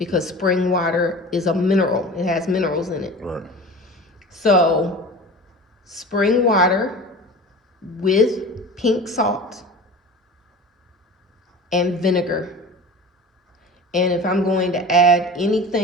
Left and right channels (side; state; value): both; normal; correlation 0.36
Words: spring water is a mineral. It has minerals in it. Right. So spring water with pink salt and vinegar. And if I'm going to add